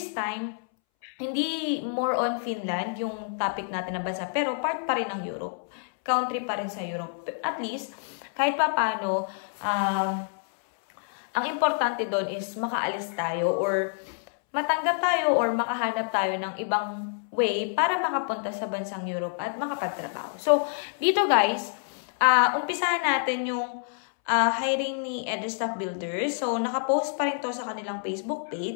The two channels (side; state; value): right; silent; 60 dB below the other